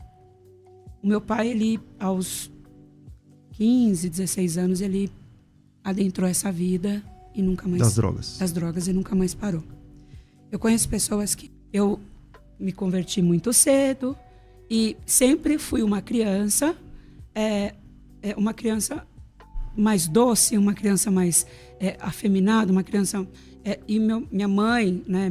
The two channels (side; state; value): both; identical; correlation 1.00